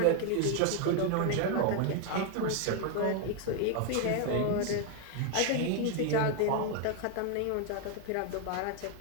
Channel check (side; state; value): both; different; correlation 0.00